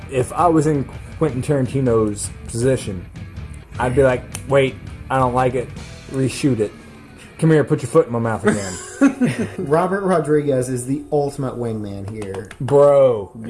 if I was in Quentin Tarantino's position, I'd be like, wait, I don't like it. Reshoot it. Come here, put your foot in my mouth again. Robert Rodriguez is the ultimate wingman here. Bro.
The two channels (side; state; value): both; identical; correlation 1.00